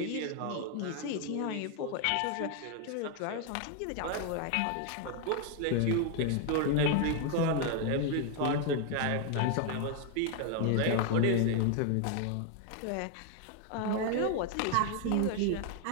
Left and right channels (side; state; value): both; different; correlation 0.00